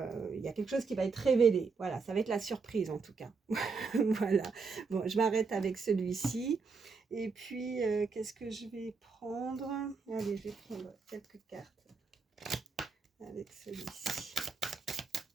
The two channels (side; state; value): left; quieter; 4.8 dB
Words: y a quelque chose qui va être révélé, voilà, ça va être la surprise en tout cas. Voilà, bon, je m'arrête avec celui-ci. Et puis, qu'est-ce que je vais prendre? Allez, je vais prendre quelques cartes avec celui-ci.